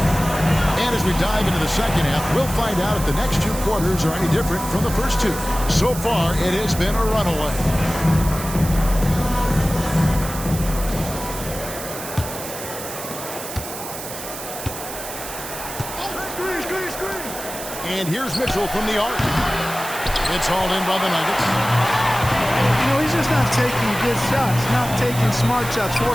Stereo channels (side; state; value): right; noise; hiss, 10 dB below the sound